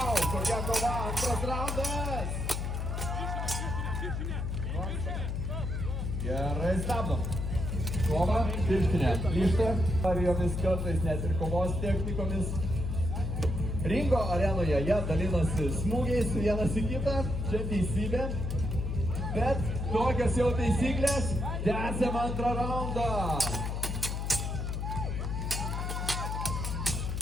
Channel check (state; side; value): noise; left; hum, 2 dB below the sound